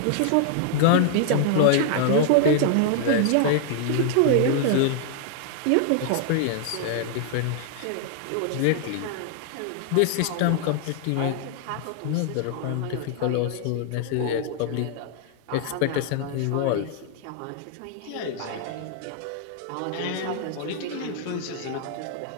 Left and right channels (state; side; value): different; both; correlation 0.00